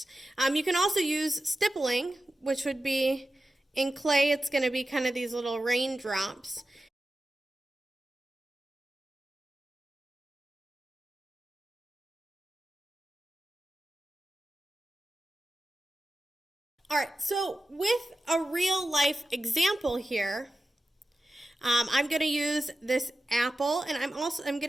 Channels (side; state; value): both; normal; correlation 0.93